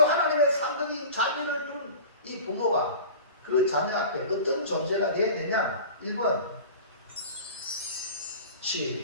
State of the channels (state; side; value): inverted; both; correlation -0.36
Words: 하나님의 상급인 자녀를 둔 이 부모가 그 자녀 앞에 어떤 존재가 되어야 되냐? 1번